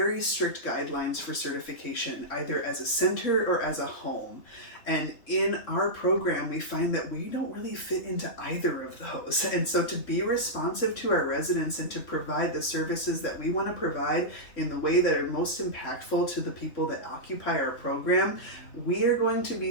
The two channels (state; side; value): late; right; 3.6 ms